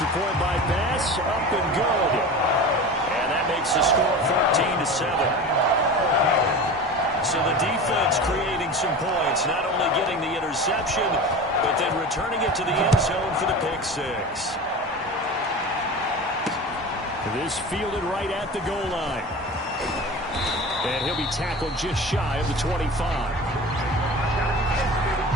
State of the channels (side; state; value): both; normal; correlation 0.32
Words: point by Bass, up and good. And that makes the score 14-7. So the defense creating some points, not only getting the interception, but then returning it to the end zone for the pick 6. This fielded right at the goal line. And he'll be tackled just shy of the 25.